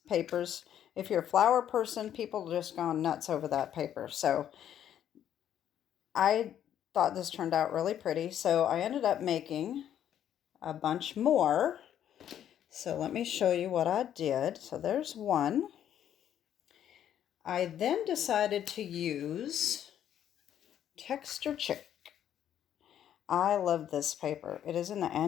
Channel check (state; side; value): quieter; right; 10.3 dB